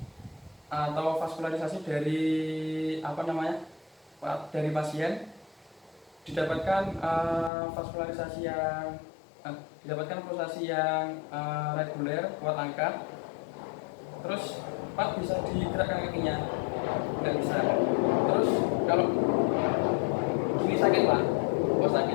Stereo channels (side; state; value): right; drops out; at 7.5 s